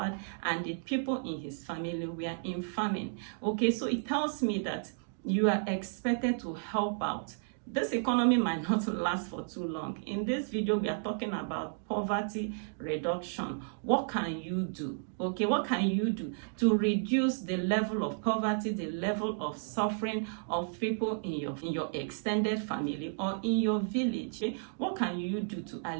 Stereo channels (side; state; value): left; silent; digital silence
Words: and the people in his family were in famine. Okay, so it tells me that you are expected to help out. This economy might not last for too long. In this video, we are talking about poverty reduction. What can you do? Okay, what can you do to reduce the level of poverty, the level of suffering of people in your extended family or in your village? Okay? What can you do to